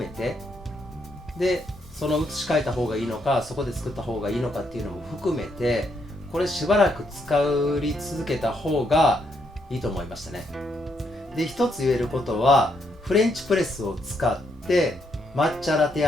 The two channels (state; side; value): normal; both; correlation 0.76